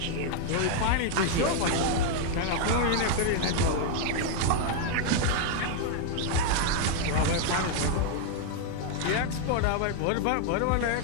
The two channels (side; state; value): both; different; correlation 0.00